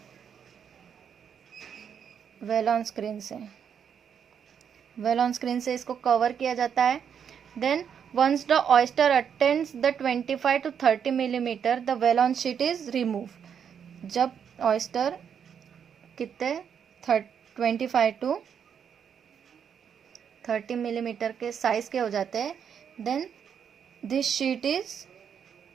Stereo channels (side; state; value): left; quieter; 7.7 dB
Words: वेल ऑन स्क्रीन से। वेल ऑन स्क्रीन से इसको कवर किया जाता है। Then once the oyster attains the 25 to 30 millimeter the well on sheet is removed। जब oyster कितने 25 to 30 मिलीमीटर के साइज के हो जाते हैं, then this sheet is